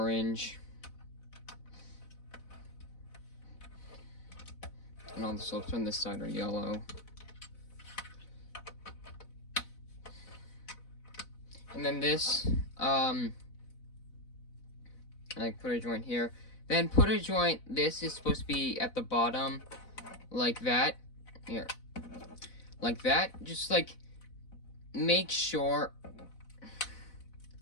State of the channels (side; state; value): right; late; 4.0 ms